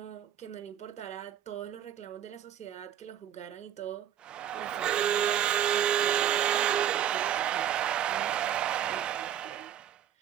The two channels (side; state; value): left; quieter; 10.6 dB